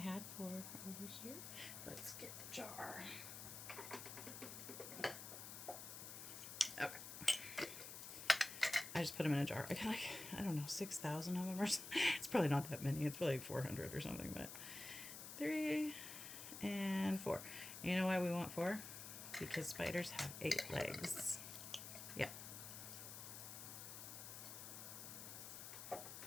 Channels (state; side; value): noise; left; hiss, 9 dB below the sound